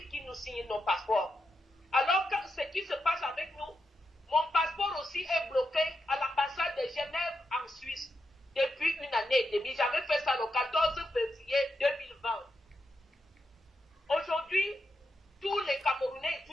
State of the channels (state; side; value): normal; both; correlation 0.85